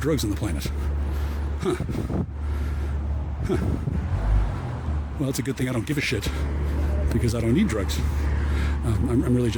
drugs on the planet. Huh. Well, it's a good thing I don't give a shit because I don't need drugs. I'm really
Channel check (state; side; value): identical; both; correlation 1.00